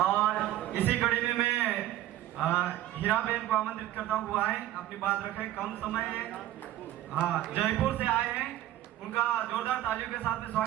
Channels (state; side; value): quieter; left; 13.9 dB